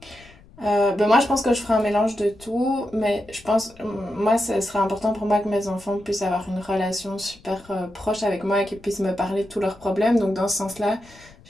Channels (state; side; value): noise; left; rumble, 25 dB below the sound